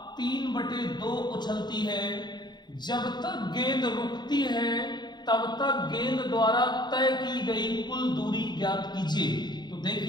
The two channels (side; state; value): right; late; 0.21 ms